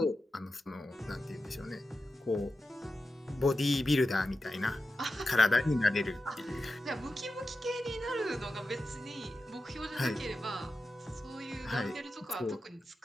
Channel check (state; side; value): normal; both; correlation 0.92